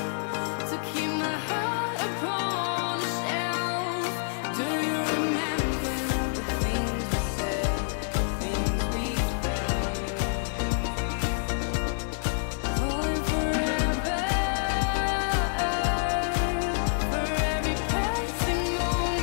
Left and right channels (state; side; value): silent; right; 60 dB below the other